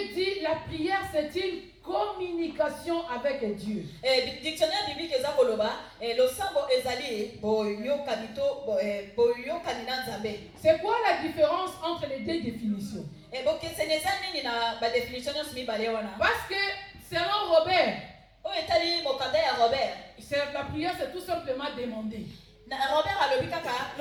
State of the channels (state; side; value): identical; both; correlation 1.00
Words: dit la prière c'est une communication avec Dieu. Dictionnaire biblique c'est quoi la différence entre les deux définitions? Parce que selon Robert, la prière c'est tout simplement demander.